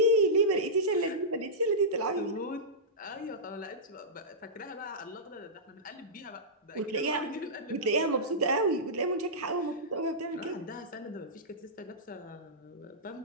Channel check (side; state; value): both; normal; correlation -0.15